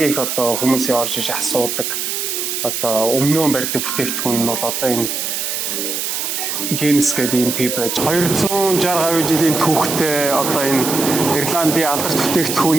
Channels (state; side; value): noise; right; hiss, 2 dB below the sound